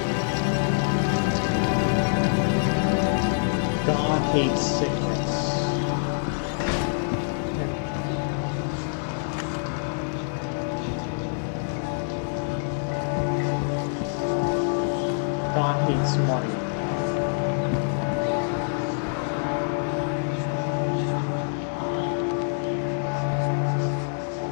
God hates sickness. God hates money.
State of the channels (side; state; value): right; silent; digital silence